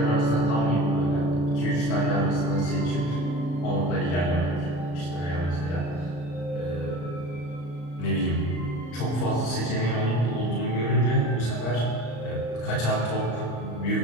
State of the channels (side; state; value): right; late; 34 ms